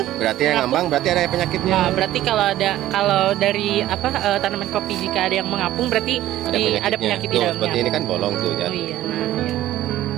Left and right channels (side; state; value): left; quieter; 14.0 dB